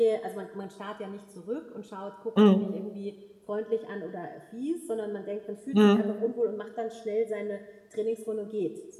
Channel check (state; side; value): identical; both; correlation 1.00